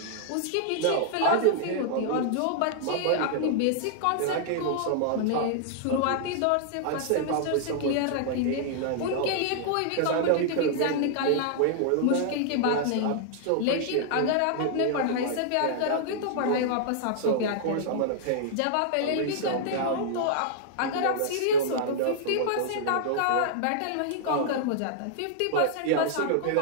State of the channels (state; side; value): different; both; correlation -0.01